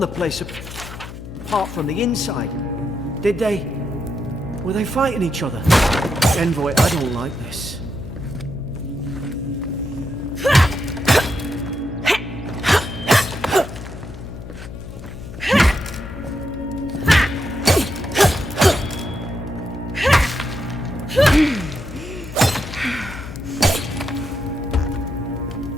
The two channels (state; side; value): noise; left; hum, 11 dB below the sound